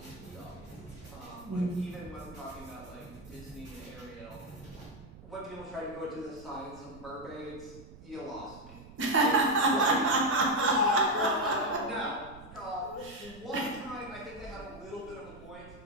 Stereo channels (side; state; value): right; noise; rumble, 18 dB below the sound